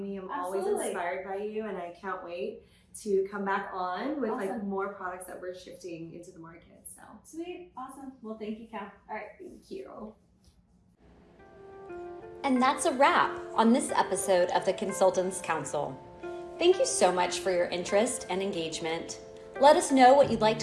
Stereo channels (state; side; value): identical; both; correlation 1.00